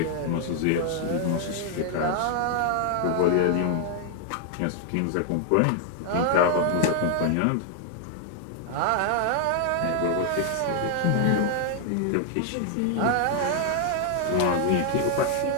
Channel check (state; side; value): different; both; correlation 0.00